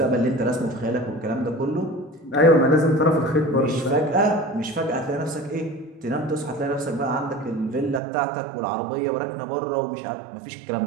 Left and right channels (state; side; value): drops out; left; at 8.0 s